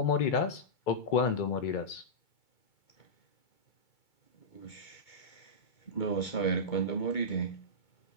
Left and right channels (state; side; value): late; right; 2.3 ms